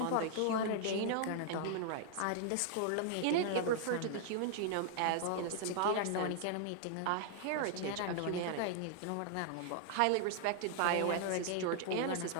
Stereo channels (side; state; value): both; different; correlation -0.01